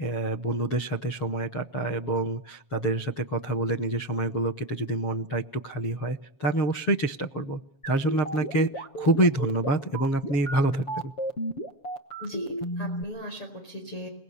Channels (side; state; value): right; late; 7.3 ms